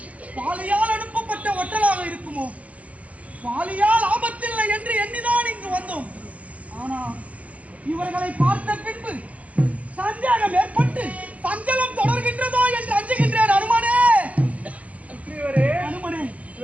பாலியால் அனுப்பப்பட்ட ஒட்டலாக இருக்குமோ? பாலியால் ஆபத்தில்லை என்று எண்ணிதான் இங்கு வந்தோம். ஆனால் இவர்களை பார்த்த பின்பு சந்தேகம் ஏற்பட்டு சஞ்சலம் தொடர்கின்றதோ என்று அஞ்சுகின்றேன். அனுமனே அனுமனே,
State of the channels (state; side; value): late; left; 0.067 ms